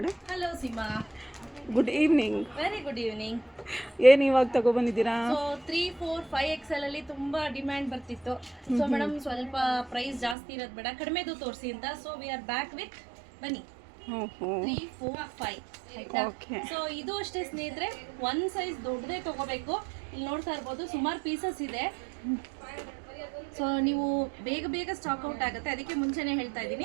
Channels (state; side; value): drops out; left; at 10.4 s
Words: Hello Seema, good evening. Very good evening. ಏನು ಇವಾಗ ತಗೊಬಂದಿದ್ದೀರಾ? ಸೊ 3, 4, 5 XL ಅಲ್ಲಿ ತುಂಬಾ ಡಿಮ್ಯಾಂಡ್ ಬರ್ತಿತ್ತು. ಸೊ ಮೇಡಮ್ ಸ್ವಲ್ಪ ಪ್ರೈಸ್ ಜಾಸ್ತಿ ಇರೋದು ಬೇಡ, ಕಡಿಮೆದು ತೋರಿಸಿ ಅಂತ. So we are back with ಬನ್ನಿ 3, 4, 5 ಆಯ್ತಾ. ಸೊ ಇದು ಅಷ್ಟೇ ಸ್ನೇಹಿತರೆ, ಒಂದು ಸೈಜ್ ದೊಡ್ಡದೇ ತಗೋಬೇಕು. ಇಲ್ಲಿ ನೋಡ್ತಾ ಇರ್ಬೋದು ಸುಮಾರು ಪೀಸಸ್ ಇದೆ. ಸೊ ನೀವು ಬೇಗ ಬೇಗ ಸ್ಟಾಕ್ ಔಟ್ ಆಗುತ್ತೆ, ಅದಕ್ಕೆ ಮುಂಚೆನೇ ಹೇಳ್ತಾ